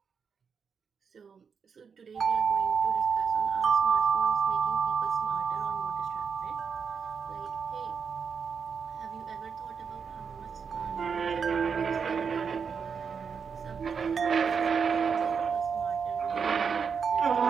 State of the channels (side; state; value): left; quieter; 6.2 dB